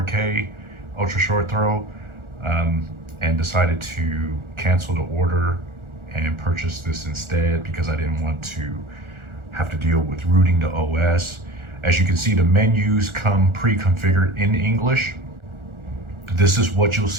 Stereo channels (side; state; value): left; late; 1.4 ms